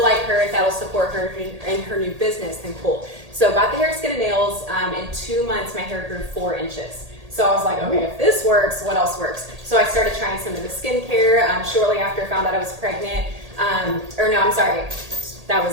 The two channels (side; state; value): left; late; 1.8 ms